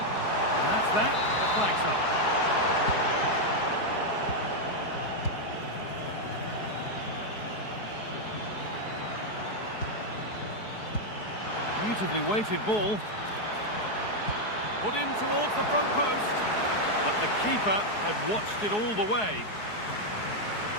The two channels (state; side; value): late; right; 4.7 ms